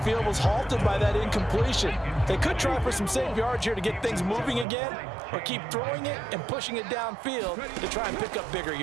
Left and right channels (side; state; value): left; drops out; at 4.7 s